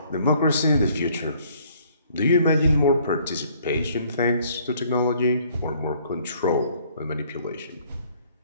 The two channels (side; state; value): both; inverted; correlation -0.61